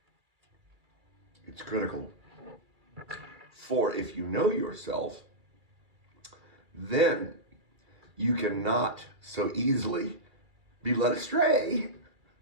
It's critical. For if you know yourself, then you cannot so easily be led astray.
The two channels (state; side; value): late; left; 2.3 ms